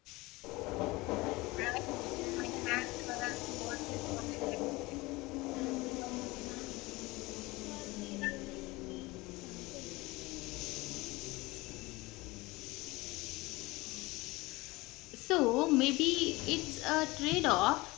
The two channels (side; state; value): right; quieter; 22.0 dB